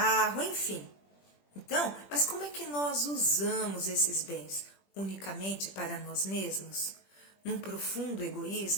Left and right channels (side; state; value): right; late; 21 ms